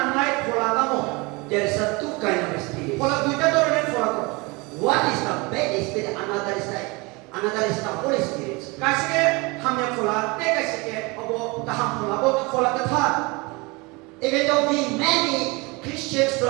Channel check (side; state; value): left; quieter; 26.3 dB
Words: pola kamu. There is a two kind of spirits. Pola duita tu orang pola tu. One is the bad spirit, another is the Holy Spirit. Kasih ke hamnya pola, kasih ke abo taham pola, abo pola ketah. Even though we many Christians